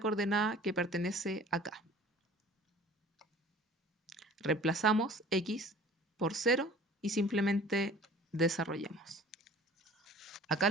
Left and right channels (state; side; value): normal; both; correlation 0.46